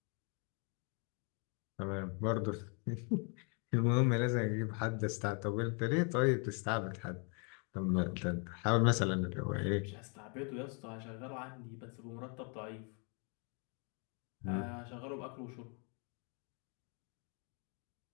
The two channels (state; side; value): quieter; right; 36.8 dB